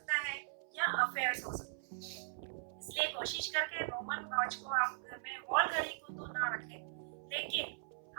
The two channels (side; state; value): left; silent; 51 dB below the other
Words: है या अफेयर्स हो सकते हैं। इसलिए कोशिश करके रोमन वॉच को आप घर में, वॉल घड़ी को तो ना रखें, लेकिन